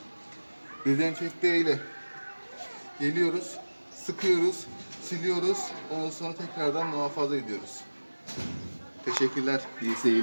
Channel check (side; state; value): both; inverted; correlation -1.00